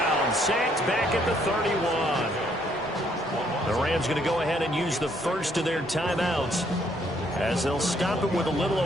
Sacked back at the 31. The Rams going to go ahead and use the first of their timeouts as they'll stop it with a little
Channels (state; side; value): normal; both; correlation 0.68